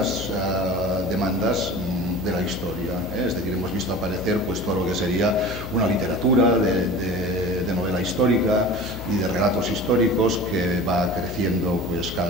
de la historia. Es decir, hemos visto aparecer pues, todo lo que sería una literatura de novela histórica y de relatos históricos que va creciendo pues,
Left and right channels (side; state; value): left; noise; hum, 10 dB below the sound